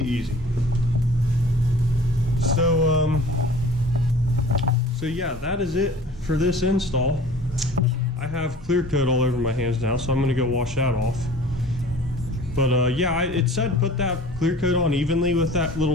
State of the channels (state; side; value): normal; both; correlation 0.46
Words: easy. So yeah, that is it for this install. I have clear coat all over my hands now, so I'm gonna go wash that off. But yeah, it said put that clear coat on evenly with that